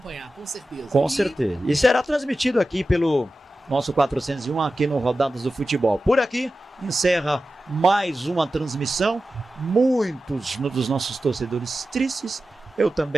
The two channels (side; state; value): both; normal; correlation 0.94